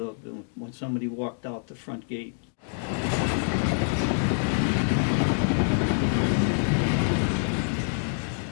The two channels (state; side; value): silent; right; digital silence